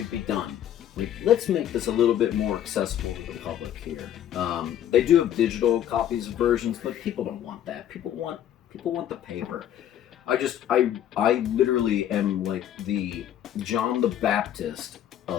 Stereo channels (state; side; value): quieter; right; 10.7 dB